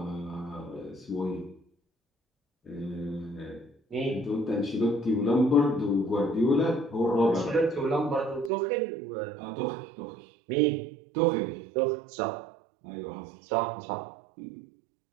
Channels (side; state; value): left; drops out; at 8.5 s